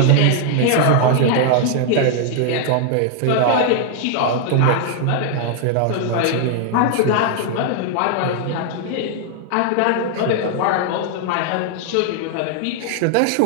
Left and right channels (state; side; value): different; both; correlation 0.00